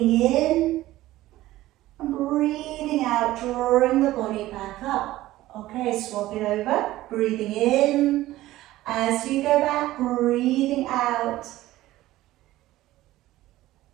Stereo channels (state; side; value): quieter; left; 16.0 dB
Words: in and breathing out, drawing the body back up. Okay, swap it over, breathing in, as you go back, breathing out,